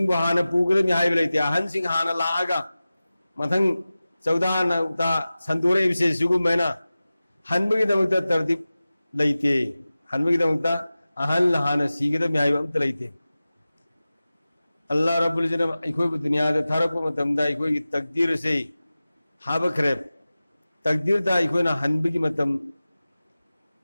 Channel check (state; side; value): inverted; both; correlation -0.96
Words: हाना पूगदम हाइब लेते अहन सिंह हाना लागा मथंग चौदान ता संतोरे विषय सुगुमैना हनबगी दमकता तरतीब लेते हनबगी दमकता अहन हाना सीगदम हाइब अमत लेते अल्लाह रब्बुल इज़्ज़त इखोय दुनिया दा थरप मतमदा इखोय की तकदीर से हाबखरे तकदीर दा इखोय ना हनबगी मतम